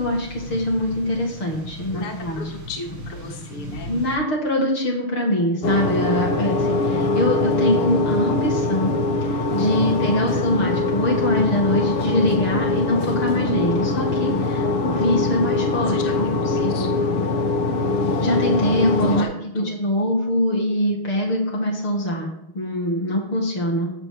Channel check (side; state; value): right; late; 6.5 ms